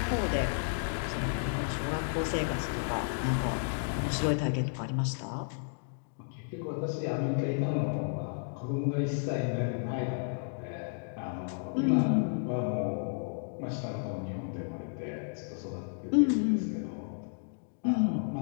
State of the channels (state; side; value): silent; right; digital silence